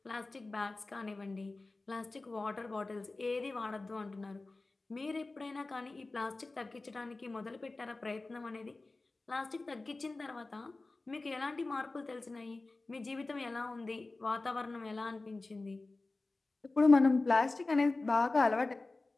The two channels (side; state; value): right; quieter; 3.3 dB